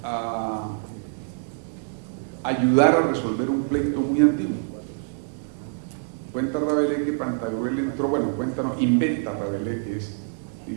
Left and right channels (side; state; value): left; silent; digital silence